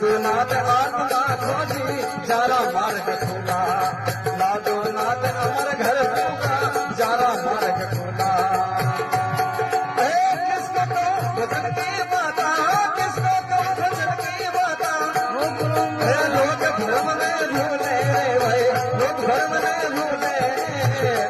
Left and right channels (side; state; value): both; identical; correlation 1.00